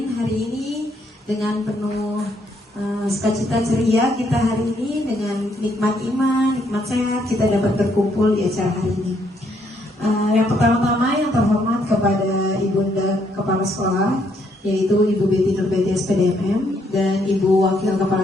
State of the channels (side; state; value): both; normal; correlation 0.72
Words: Hari ini dengan penuh sukacita ceria kita hari ini dengan nikmat iman, nikmat sehat kita dapat berkumpul di acara hari ini. Yang pertama-tama yang terhormat kepada Ibunda Kepala Sekolah, yaitu Ibu Betty Nurbeti SPDMM, dan Ibu Wakil